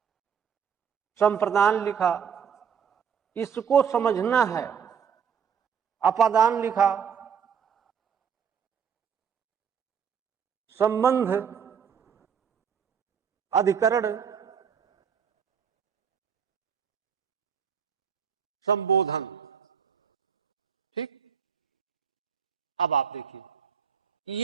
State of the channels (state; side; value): quieter; left; 7.3 dB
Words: संप्रदान लिखा, इसको समझना है। अपादान लिखा, संबंध, अधिकरण, संबोधन। ठीक, अब आप देखिए,